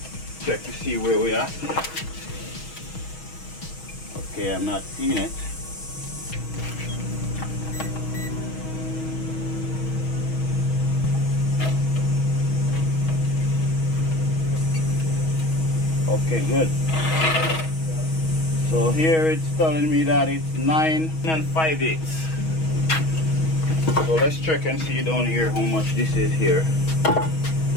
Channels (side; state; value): right; late; 6.3 ms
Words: Check to see where we are. Okay, I'm not seeing it. Okay, good. So here it's telling me that it's 9 5/8. So let's check and see down here how much this is here.